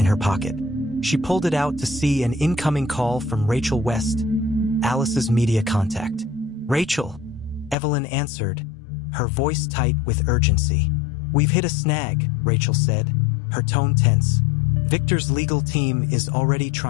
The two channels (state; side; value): drops out; right; at 7.8 s